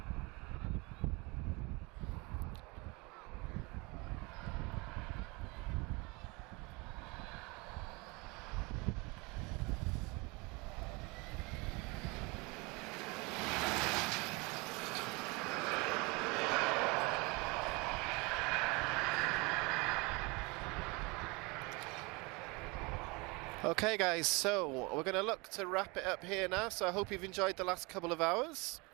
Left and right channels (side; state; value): left; quieter; 26.8 dB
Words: Okay guys, so we're going to look to wrap it up here now, so I hope you've enjoyed the last couple of hours.